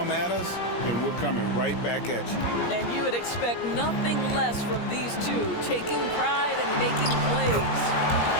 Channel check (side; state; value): right; late; 17 ms